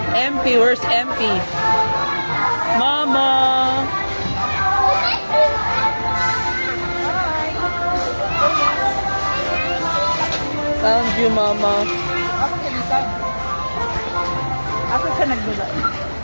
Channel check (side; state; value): both; inverted; correlation -1.00